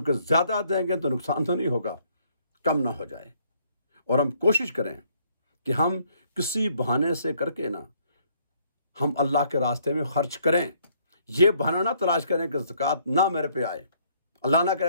زیادہ دیں گے تو نقصان تو نہیں ہوگا، کم نہ ہو جائے۔ اور ہم کوشش کریں کہ ہم کسی بہانے سے کر کے نا ہم اللہ کے راستے میں خرچ کریں، یہ بہانہ نہ تلاش کریں کہ زکوٰۃ نہ میرے پہ آئے، اللہ نہ کرے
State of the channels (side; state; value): both; inverted; correlation -0.67